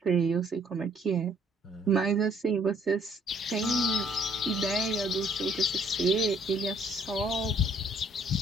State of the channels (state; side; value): normal; both; correlation 0.63